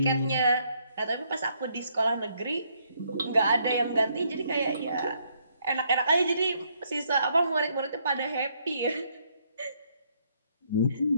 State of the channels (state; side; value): inverted; both; correlation -0.71